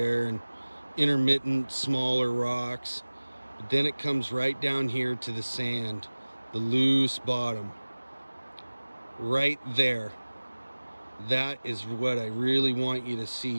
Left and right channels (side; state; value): both; inverted; correlation -1.00